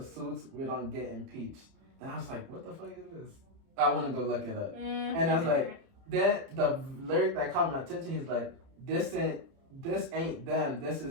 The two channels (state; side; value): late; left; 30 ms